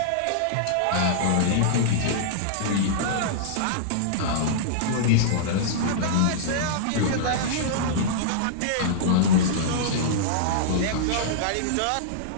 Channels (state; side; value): different; both; correlation -0.02